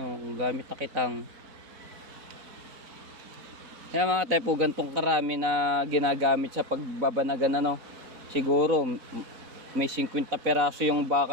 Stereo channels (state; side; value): late; left; 4.0 ms